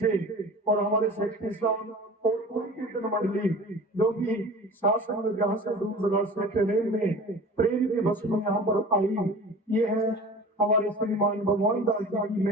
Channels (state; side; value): normal; both; correlation 0.39